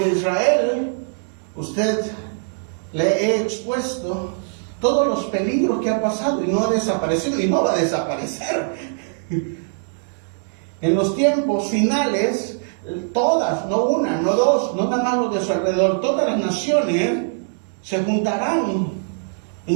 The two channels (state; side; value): silent; left; digital silence